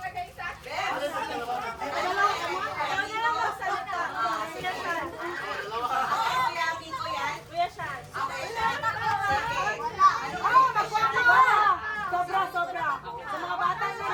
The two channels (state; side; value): identical; both; correlation 1.00